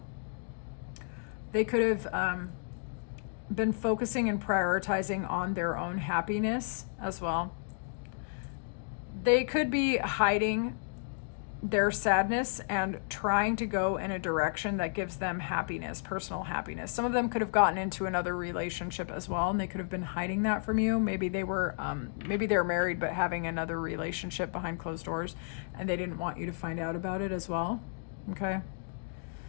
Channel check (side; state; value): right; silent; digital silence